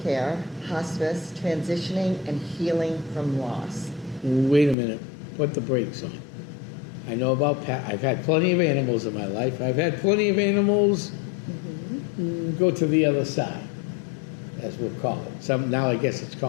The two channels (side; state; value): right; drops out; at 4.8 s